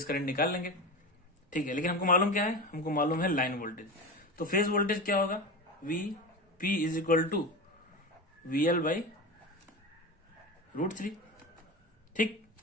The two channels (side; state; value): both; normal; correlation 0.25